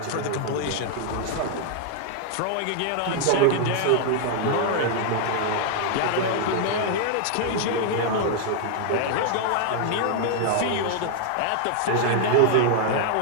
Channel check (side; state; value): both; different; correlation 0.00